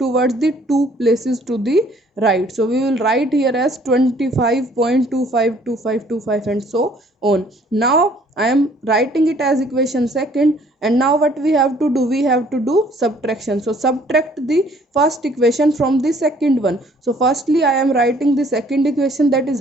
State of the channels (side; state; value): both; normal; correlation 0.59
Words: the two places to the right. So we will write here as 25.252525 and so on. Now I am writing it as equation second, and now what we have to do, we have to do subtraction. So subtract the first equation from the second one. So firstly I am writing the second equation, that is